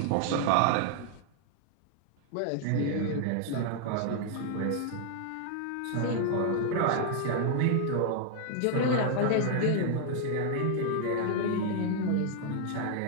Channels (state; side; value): different; both; correlation 0.00